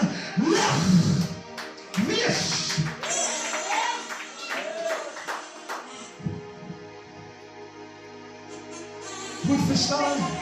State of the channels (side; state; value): both; identical; correlation 1.00